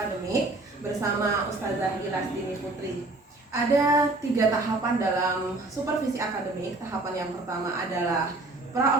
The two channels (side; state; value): left; quieter; 3.0 dB